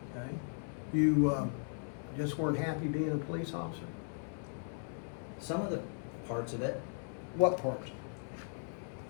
Okay. You just weren't happy being a police officer? Some of the parts of it. What parts?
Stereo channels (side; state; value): right; silent; 53 dB below the other